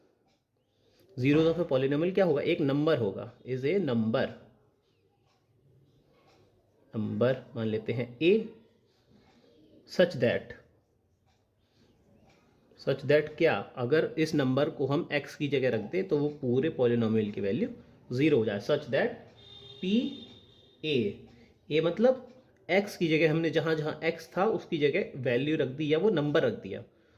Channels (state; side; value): identical; both; correlation 1.00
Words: Zeros of a polynomial क्या होगा, एक नंबर होगा, इज ए नंबर मान लेते हैं ए, सच दैट क्या, अगर इस नंबर को हम x की जगह रख दें तो वो पूरे पॉलिनोमियल की वैल्यू ज़ीरो हो जाए। सच दैट पी ए मतलब x की जगह हमने जहाँ जहाँ x था उसकी जगह वैल्यू रख दी या वो नंबर रख दिया,